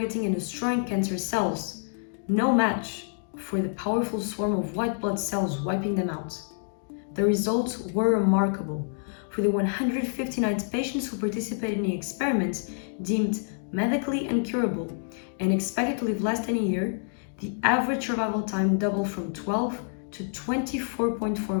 and destroying cancer cells, no match for the powerful swarm of white blood cells wiping them out. The results were remarkable. For the 159 patients who participated in the experiment, deemed medically incurable and expected to live less than a year, the average survival time doubled from 12 to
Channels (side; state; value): right; silent; digital silence